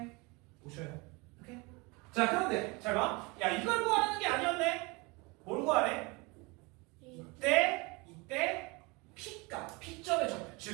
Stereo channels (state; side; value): quieter; left; 26.8 dB